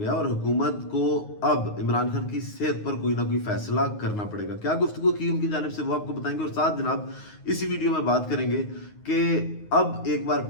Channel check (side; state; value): right; late; 9.5 ms